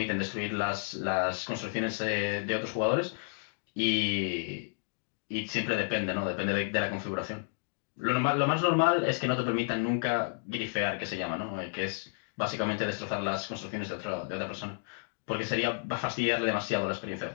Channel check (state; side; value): silent; right; digital silence